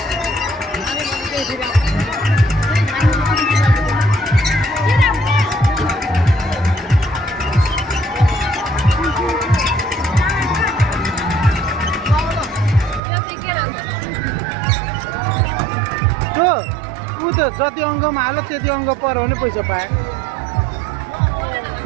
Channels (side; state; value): left; drops out; at 13.0 s